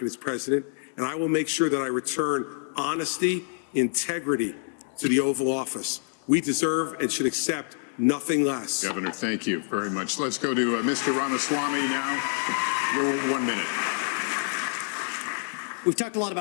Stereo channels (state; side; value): silent; right; 60 dB below the other